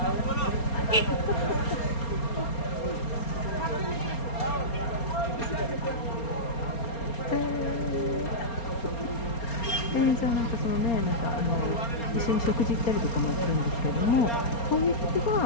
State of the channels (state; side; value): late; right; 4.3 ms